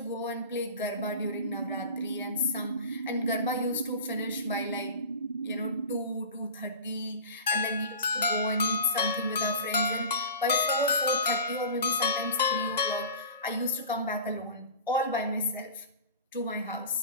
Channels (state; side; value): inverted; both; correlation -0.35